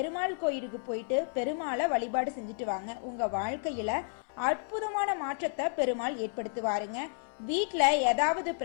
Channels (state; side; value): silent; right; 57 dB below the other